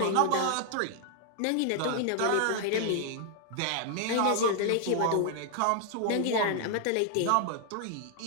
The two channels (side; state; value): both; different; correlation 0.00